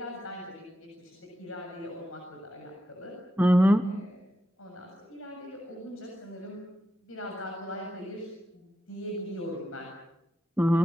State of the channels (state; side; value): normal; both; correlation 0.87